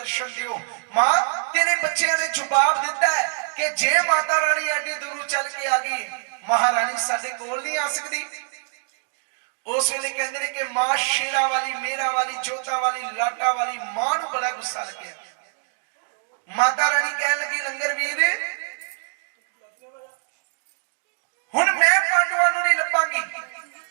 ਦਿਓ ਮਾਂ ਤੇਰੇ ਬੱਚਿਆਂ ਨੇ ਜਵਾਬ ਦਿੱਤਾ ਹੈ ਕਿ ਜੇ ਮਾਤਾ ਰਾਣੀ ਐਡੀ ਦੂਰੋਂ ਚੱਲ ਕੇ ਆ ਗਈ ਮਹਾਰਾਣੀ ਸਾਡੇ ਕੋਲ ਨਹੀਂ ਆ ਸਕਦੀ ਉਸ ਵੇਲੇ ਕਹਿੰਦੇ ਨੇ ਕਿ ਮਾਂ ਸ਼ੇਰਾਂ ਵਾਲੀ ਮੇਰਾ ਵਾਲੀ ਜੋਤਾ ਵਾਲੀ ਲਾਟਾ ਵਾਲੀ ਮਾਂ ਨੂੰ ਬੜਾ ਗੁੱਸਾ ਲੱਗਿਆ ਮਾਤਾ ਰਾਣੀ ਕਹਿਣ ਲੱਗੀ ਲੰਗਰ ਵੀਰ ਹੁਣ ਮੈਂ ਪਾਂਡਵਾਂ ਨੂੰ ਨਹੀਂ ਲੱਭਾਂਗੀ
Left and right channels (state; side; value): silent; left; digital silence